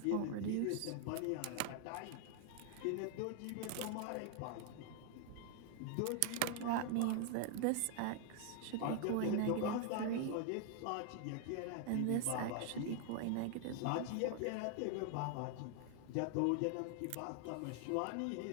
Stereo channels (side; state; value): both; different; correlation 0.00